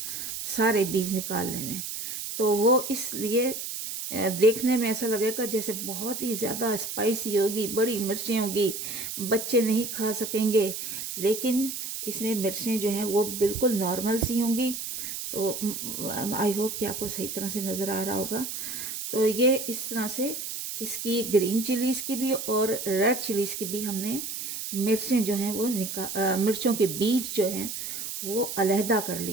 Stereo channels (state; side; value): noise; right; hiss, 6 dB below the sound